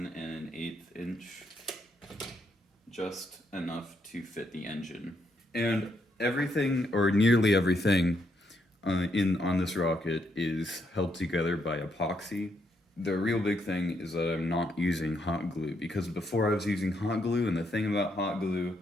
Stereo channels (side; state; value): both; normal; correlation 0.76